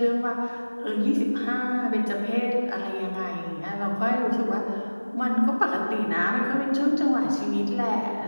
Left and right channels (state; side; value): inverted; both; correlation -1.00